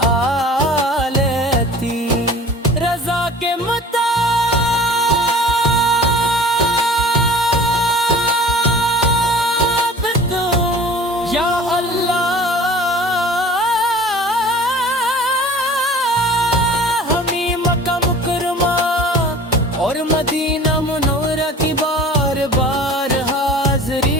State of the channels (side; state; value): both; normal; correlation 0.44